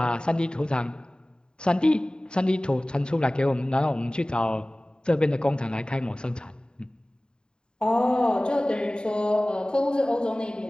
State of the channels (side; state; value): right; late; 0.048 ms